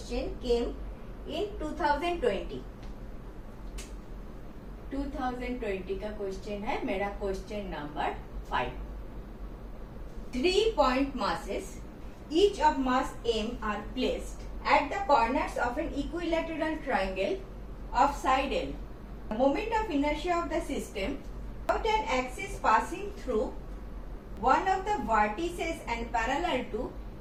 came in 2020. 2020 का question है मेरा question number 5. 3 point masses, each of mass M are placed at the corners of an equilateral triangle of side L. The moment of inertia of the system about an axis passing through one of the vertices and parallel to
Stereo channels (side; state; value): both; identical; correlation 1.00